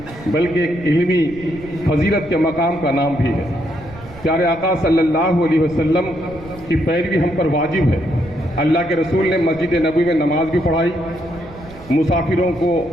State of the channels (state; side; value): noise; right; rumble, 18 dB below the sound